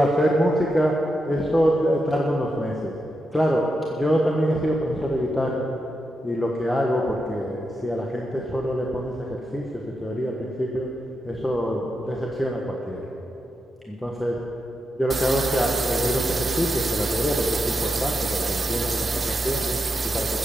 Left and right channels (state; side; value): normal; both; correlation 0.86